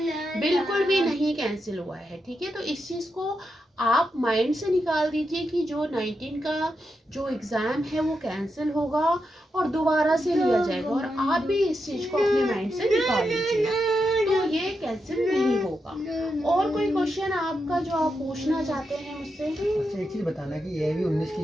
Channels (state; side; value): normal; both; correlation 0.86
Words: बिल्कुल भी नहीं कैंसिल हुआ है। ठीक है, तो इस चीज़ को आप माइंड से निकाल दीजिए कि जो 19 का जो एग्ज़ाम है वो कैंसिल होगा और दोबारा से लिया जाएगा, और आप भी इस चीज़ को अपने माइंड से निकाल लीजिए। तो ये कैंसिल नहीं होगा। और कोई क्वेश्चन आपका जो आप पूछना चाहते हैं मुझसे? अच्छा, एक चीज़ बताना कि एआईबी 19 की